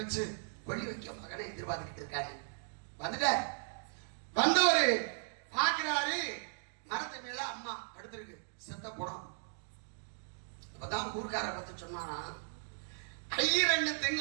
கொள்ளி வைக்க மகனை எதிர்பார்த்துக்கிட்டு இருக்காரு. வந்துட்டார். வந்தவரு பாக்குறாரு, மரத்து மேல அம்மா படுத்திருக்கு, செத்த படம். அப்பதான் ஊர்க்கார பார்த்து சொன்னாராம், 2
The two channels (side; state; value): left; silent; digital silence